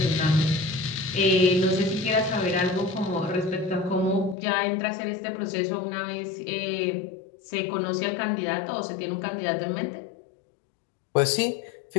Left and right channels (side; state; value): right; drops out; at 4.4 s